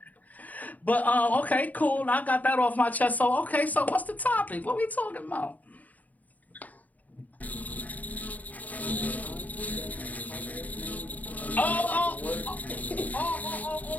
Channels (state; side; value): late; right; 0.076 ms